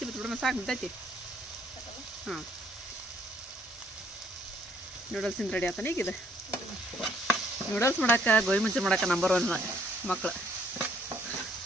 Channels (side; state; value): both; normal; correlation 0.65